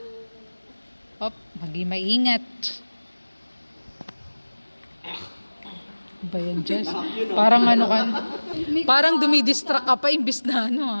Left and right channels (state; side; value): inverted; both; correlation -1.00